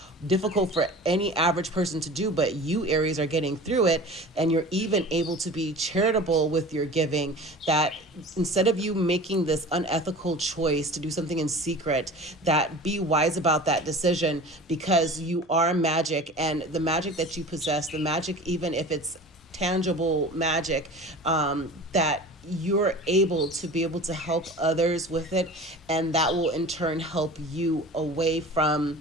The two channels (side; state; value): both; normal; correlation 0.38